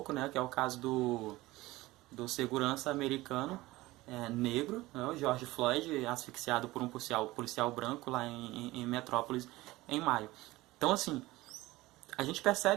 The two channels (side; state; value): left; quieter; 19.0 dB